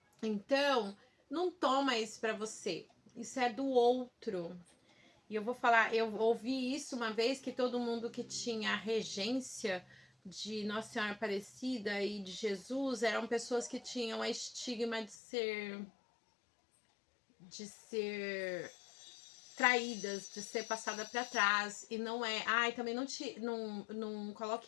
Então, não toma isso pra você. Isso é do outro. E eu vou falar, eu ouvi isso uma vez, que todo mundo que tinha a regência de Nossa Senhora Aparecida e de Jesus eram pessoas que tinham a estigma de ser traídas, de ser passada para trás, e não é. Ai, também não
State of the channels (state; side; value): drops out; right; at 15.2 s